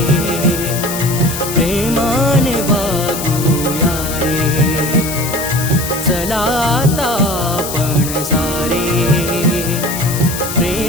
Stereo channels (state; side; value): noise; left; hiss, 7 dB below the sound